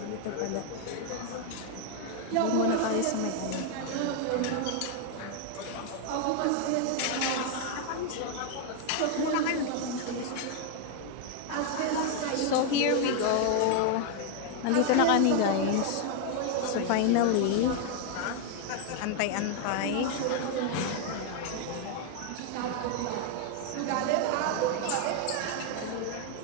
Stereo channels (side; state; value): both; different; correlation 0.00